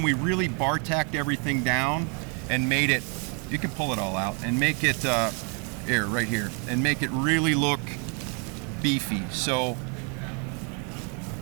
we really bar tacked everything down and made it. You can pull it all out and make it here, right here, and make it really look beefy. So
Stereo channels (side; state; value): left; quieter; 37.4 dB